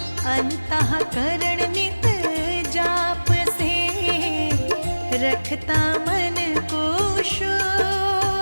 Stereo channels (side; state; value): both; inverted; correlation -1.00